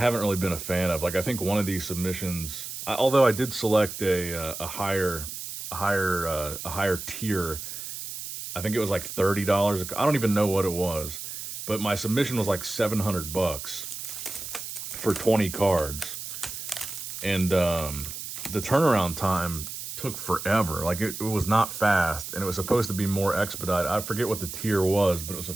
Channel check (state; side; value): noise; right; hiss, 8 dB below the sound